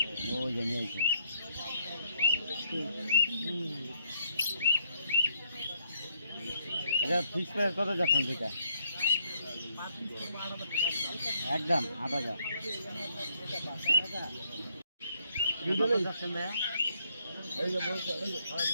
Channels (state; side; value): inverted; both; correlation -0.71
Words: ফিক্স প্রাইস কত যাচ্ছেন সেটা? একদম 8,000।